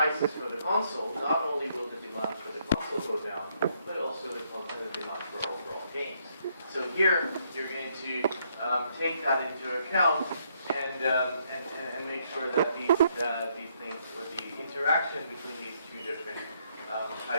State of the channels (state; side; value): inverted; both; correlation -0.72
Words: for the console, not only will the demand for the console go down, but also the demand for overall games. So here you're going to take that into account and make sure that these things, or the interaction between these two different